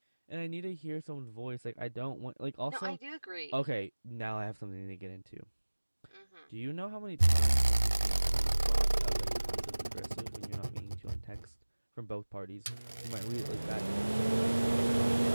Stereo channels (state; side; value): inverted; both; correlation -1.00